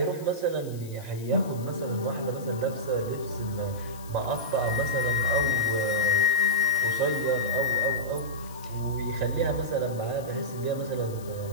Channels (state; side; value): noise; left; hiss, 20 dB below the sound